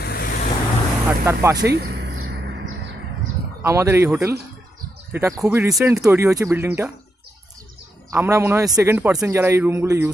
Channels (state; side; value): normal; both; correlation 0.82